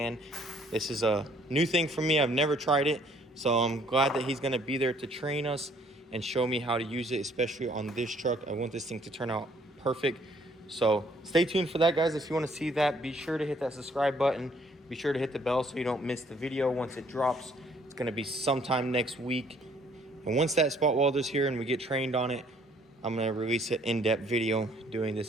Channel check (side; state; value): both; normal; correlation 0.62